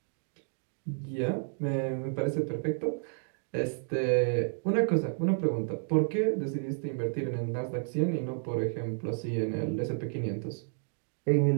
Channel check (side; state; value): left; silent; digital silence